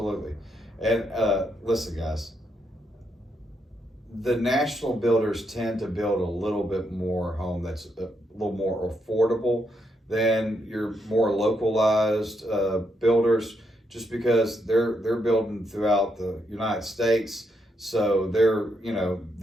And listen, guys, the national builders tend to build a little bit more home that's a little more affordable than your more localized builders, just because they're building throughout the United States. So they're,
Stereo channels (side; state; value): both; normal; correlation 0.79